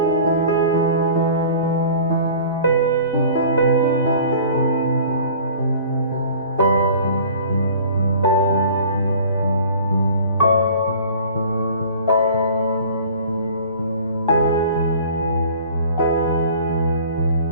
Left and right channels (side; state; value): both; inverted; correlation -0.46